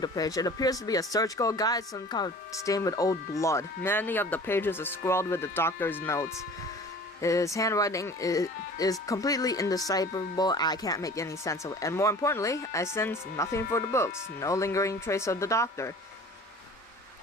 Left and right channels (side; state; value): both; normal; correlation 0.44